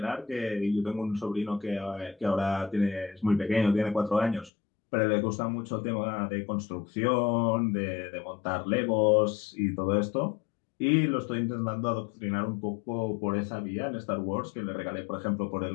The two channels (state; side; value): drops out; right; at 4.5 s